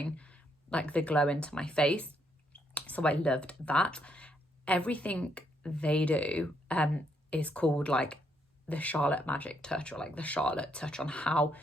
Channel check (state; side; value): normal; both; correlation 0.74